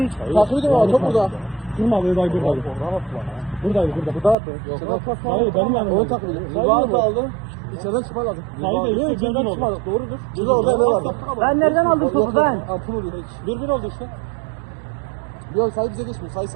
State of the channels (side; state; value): left; drops out; at 4.4 s